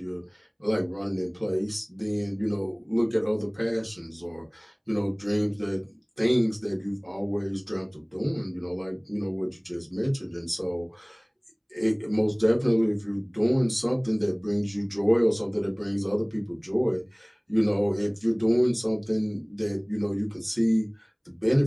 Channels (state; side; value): identical; both; correlation 1.00